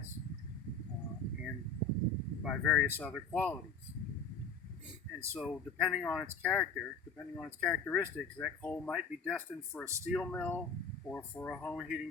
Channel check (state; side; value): quieter; right; 4.4 dB